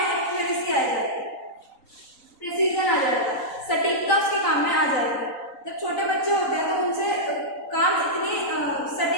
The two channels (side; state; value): right; late; 3.9 ms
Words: एक्यूरेसी आ जाएगी, प्रिसीजन आ जाएगा, सटीकता उसके काम में आ जाएगी। जब छोटे बच्चे होते हैं तो उनसे काम इतनी